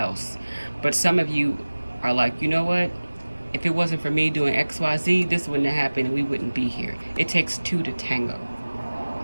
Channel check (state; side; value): inverted; both; correlation -1.00